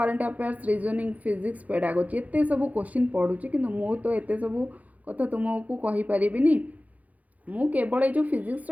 affairs reasoning physics pedagogy एत सब क्वेश्चन पढ़ुची कि मु तो एत सब कथा तुमको कहीपरि मु केवल जो फिजिक्स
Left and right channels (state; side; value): late; left; 0.075 ms